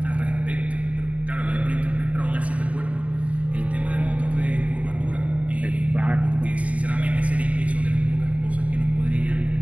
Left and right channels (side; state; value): left; late; 0.067 ms